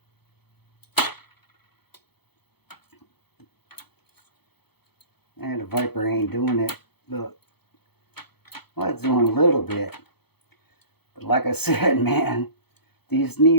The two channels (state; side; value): late; right; 0.97 ms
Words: And the Viper ain't doing it. Look. Well, it's doing a little bit. But like I said, man, these